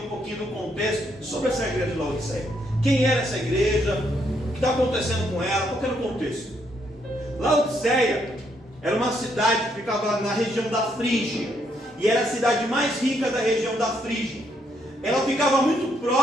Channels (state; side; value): normal; both; correlation 0.74